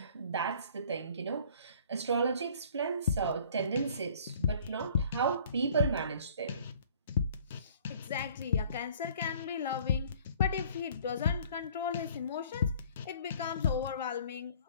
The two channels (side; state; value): both; inverted; correlation -0.53